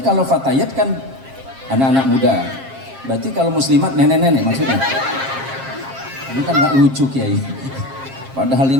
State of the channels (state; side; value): late; left; 7.5 ms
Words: kalau Fatayat kan anak-anak muda. Berarti kalau muslimat nenek-nenek maksudnya? Ini kan gak lucu Kiai. Padahal